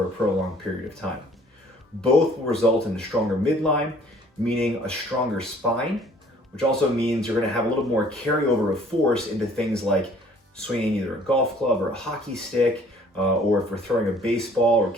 a prolonged period of time. Both will result in a stronger midline, meaning a stronger spine, which also means you're going to have a little more carryover of force into things like swinging either a golf club or a hockey stick, or if we're throwing a baseball or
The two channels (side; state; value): both; normal; correlation 0.55